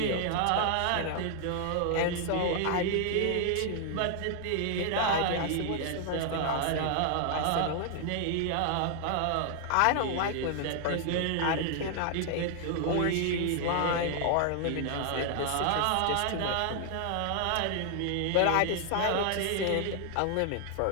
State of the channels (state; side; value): different; both; correlation 0.00